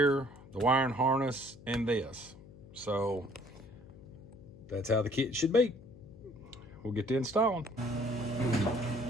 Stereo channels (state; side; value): noise; left; hum, 20 dB below the sound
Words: the wiring harness, and this. So that's how the kit should be. We'll get to installing.